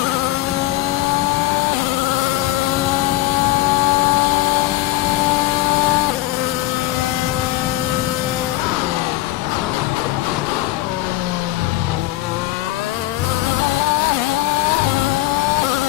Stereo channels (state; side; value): quieter; right; 16.4 dB